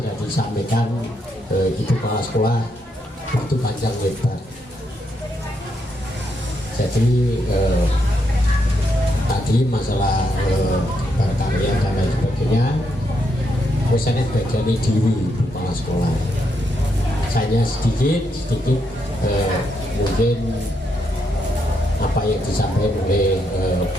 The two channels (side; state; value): both; normal; correlation 0.79